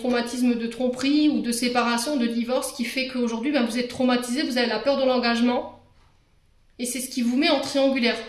de tromperie ou de séparation, de divorce, qui fait qu'aujourd'hui, ben, vous êtes traumatisé, vous avez la peur de l'engagement. Et c'est ce qui vous met en triangulaire.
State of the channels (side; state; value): both; identical; correlation 1.00